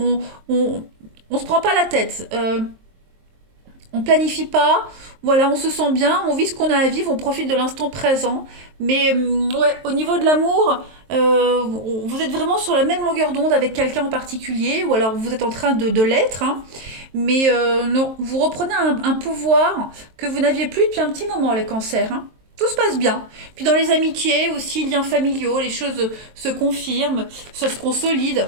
se prend pas la tête. On planifie pas, voilà, on se sent bien, on vit ce qu'on a à vivre, on profite de l'instant présent. Mais ouais, au niveau de l'amour, vous êtes vraiment sur la même longueur d'onde avec quelqu'un en particulier, ou alors vous êtes en train de l'être, hein. Mais non, vous reprenez un pouvoir que vous n'aviez plus depuis un petit moment, les cancers, hein. Tout se passe bien. Puis dans les amitiés aussi, liens familiaux, les choses se confirment, ça se consolide.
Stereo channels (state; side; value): late; left; 23 ms